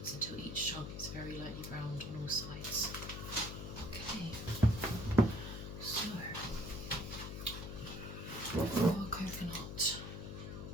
until each chunk is very lightly browned on all sides. Okay, so for our coconut,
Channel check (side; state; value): left; noise; hum, 7 dB below the sound